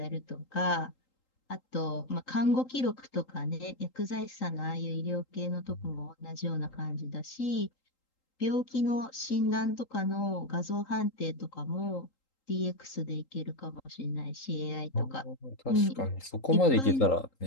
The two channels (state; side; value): late; right; 3.8 ms